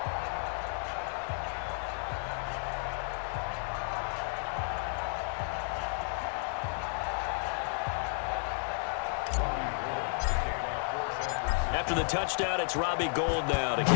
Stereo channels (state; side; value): silent; right; 56 dB below the other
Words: After the touchdown, it's Robbie Gould now to